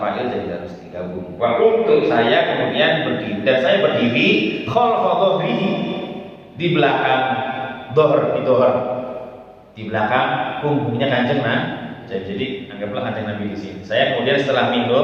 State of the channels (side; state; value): both; identical; correlation 1.00